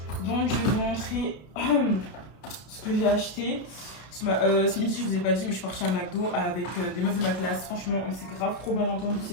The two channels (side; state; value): right; late; 32 ms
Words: Donc, je vais vous montrer ce que j'ai acheté. Ce midi, je vous ai pas dit, mais je suis partie à McDo avec des meufs de ma classe. Franchement, on s'est grave trop bien entendu,